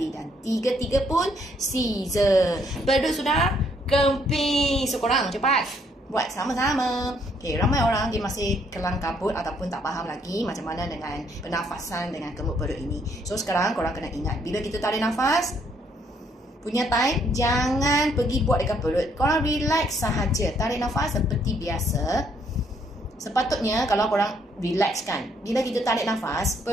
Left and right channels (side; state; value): both; normal; correlation 0.69